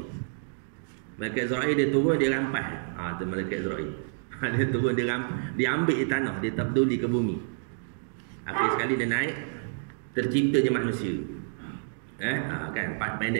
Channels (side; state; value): left; silent; digital silence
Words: Malaikat Israel dia turun, dia rampas. Tu malaikat Israel. Dia turun, dia ambil tanah, dia tak peduli ke bumi. Akhir sekali dia naik, terciptanya manusia. Kan,